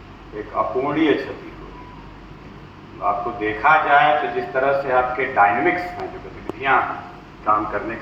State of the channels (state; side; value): identical; both; correlation 1.00